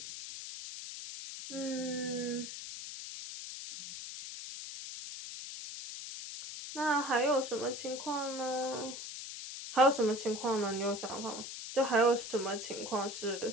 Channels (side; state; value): left; noise; hiss, 9 dB below the sound